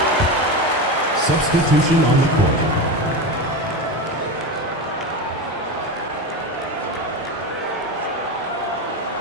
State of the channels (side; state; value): both; normal; correlation 0.21